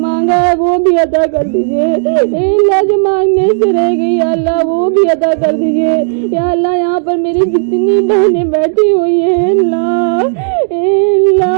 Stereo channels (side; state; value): left; silent; digital silence